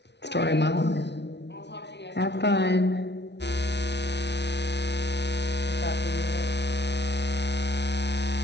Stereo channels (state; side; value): late; right; 0.50 ms